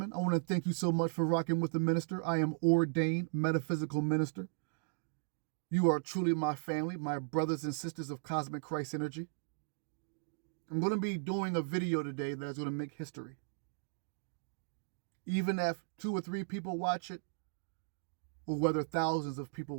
I want to thank you so much for rocking with the minister. I am ordained metaphysical minister. You are truly my family, my brothers and sisters of cosmic Christ energy. I'm going to be doing a video today that is going to make history. Even if 2 or 3 people watch it, or whether thousands of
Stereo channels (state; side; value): silent; left; digital silence